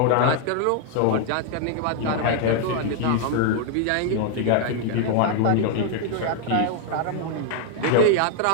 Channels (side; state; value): both; different; correlation 0.00